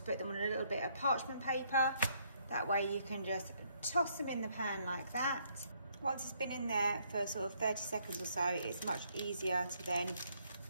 put them on a little bit of parchment paper. That way you can just toss them in the pan like that. Once it's been in there for sort of 30 seconds or so, it's much easier to then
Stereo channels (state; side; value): inverted; both; correlation -0.69